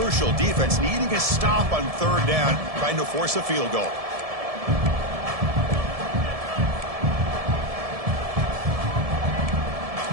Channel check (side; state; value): left; late; 1.7 ms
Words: Defense needing a stop on 3rd down, trying to force a field goal.